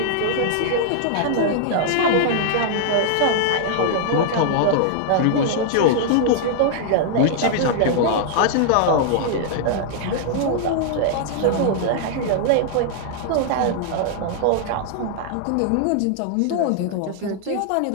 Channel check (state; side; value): different; both; correlation -0.01